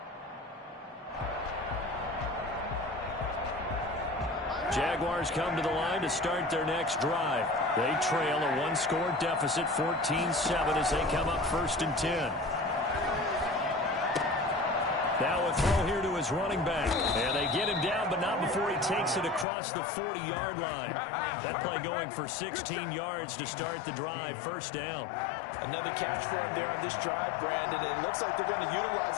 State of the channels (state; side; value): drops out; right; at 19.5 s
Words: Jaguars come to the line to start their next drive. They trail a 1-score deficit, 14-7, as they come up 1st and 10. Now a throw here to his running back. And they get him down, but not before he takes it across the 40-yard line. That play going for 16 yards to start the drive, 1st down. Another catch for him there on this drive, Brandon. And it looks like they're going to